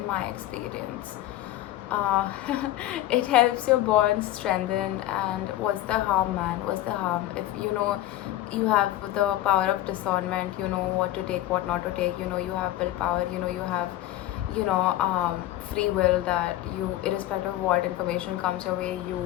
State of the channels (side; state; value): right; quieter; 14.6 dB